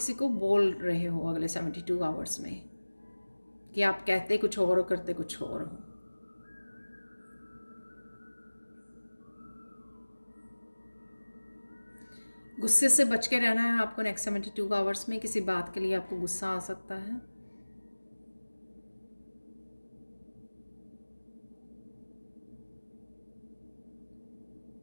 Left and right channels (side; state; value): both; inverted; correlation -1.00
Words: को बोल रहे हो अगले 72 आवर्स में कि आप कहते कुछ और करते कुछ और हो। गुस्से से बच के रहना है आपको। नेक्स्ट 72 आवर्स में किसी बात के लिए आपको गुस्सा आ सकता है।